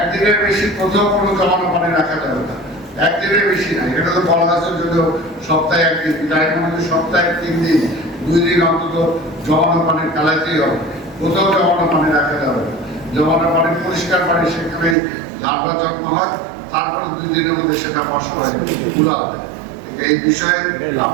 বেশি কোথাও কোনো জমানো পানি রাখা যাবে না, একদিনের বেশি না। এটা তো বলা আছে যদি সপ্তাহে 1 দিন, তাই মনে সপ্তাহে 3 দিন, 2 দিন অন্তত জমানো পানি ফেলাইতেই হবে। কোথাও জমানো পানি রাখা যাবে না। জমানো পানি পরিষ্কার পানি, সেখানে লার্ভা জন্ম হয়, তারপরে 2 দিনের মধ্যে সেটা নষ্ট হয়, পুরা হবে। এই বিষয়ে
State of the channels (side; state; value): left; drops out; at 15.0 s